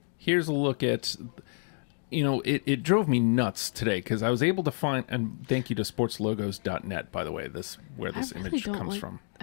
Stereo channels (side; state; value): right; silent; 58 dB below the other